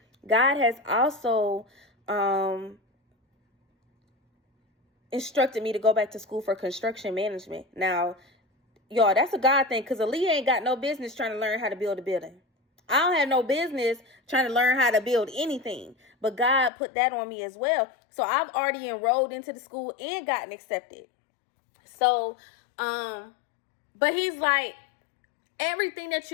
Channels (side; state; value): right; drops out; at 16.7 s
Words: God has also instructed me to go back to school for construction management. Now, y'all, that's a God thing, because Aaliyah ain't got no business trying to learn how to build a building. I don't have no business trying to learn how to build anything, but God put that on me as well. So I've already enrolled into the school and gotten accepted. So, but he's like, everything that